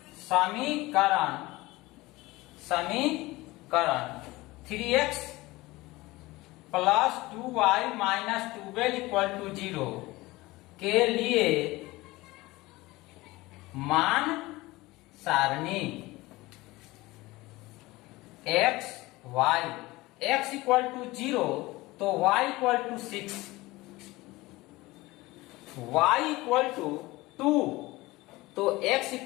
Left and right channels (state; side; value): quieter; right; 20.2 dB